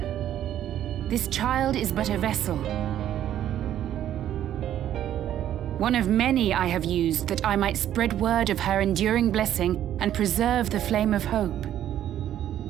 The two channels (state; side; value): quieter; left; 11.4 dB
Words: This child is but a vessel. One of many I have used that I might spread word of her enduring blessing and preserve the flame of hope.